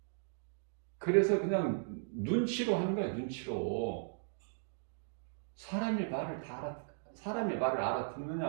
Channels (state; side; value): silent; left; digital silence